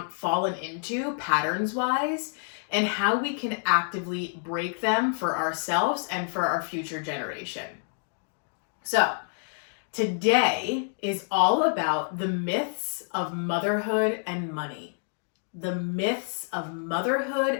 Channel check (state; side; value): silent; right; 59 dB below the other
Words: fallen into patterns wise, and how we can actively break them for ourselves and for our future generation. So today is all about the myths of motherhood and money. The myths of motherhood